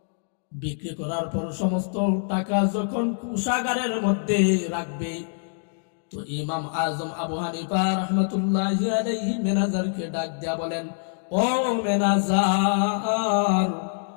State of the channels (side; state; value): right; silent; digital silence